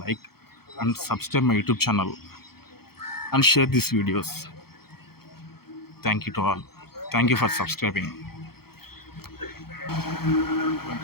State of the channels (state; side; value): late; right; 0.95 ms